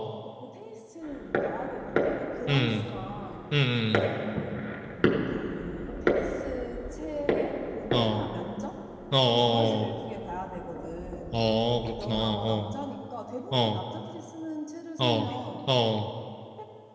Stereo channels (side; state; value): both; identical; correlation 1.00